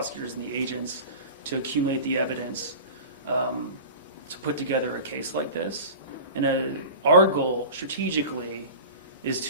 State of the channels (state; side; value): inverted; both; correlation -0.35